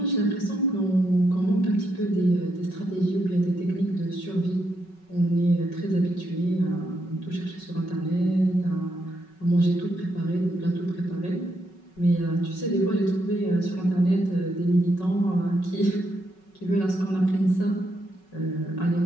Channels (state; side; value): late; right; 5.4 ms